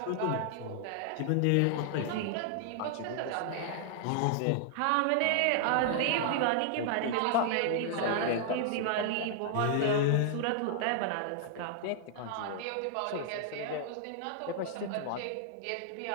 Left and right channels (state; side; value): different; both; correlation 0.00